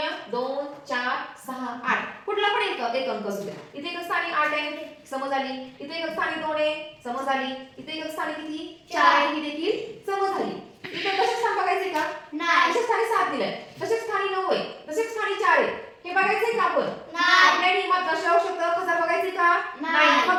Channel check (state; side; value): identical; both; correlation 1.00